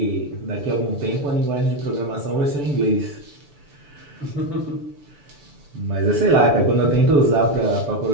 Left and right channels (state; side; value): late; left; 6.9 ms